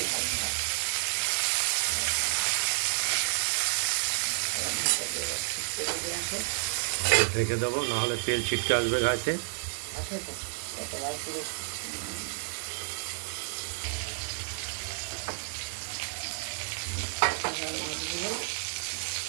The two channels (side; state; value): left; silent; digital silence